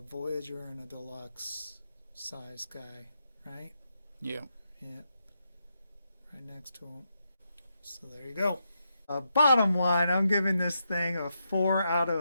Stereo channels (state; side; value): inverted; both; correlation -0.83